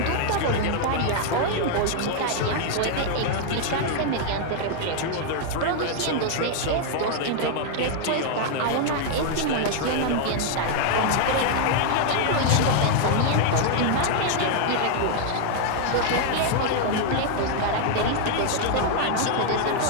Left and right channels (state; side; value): different; both; correlation 0.00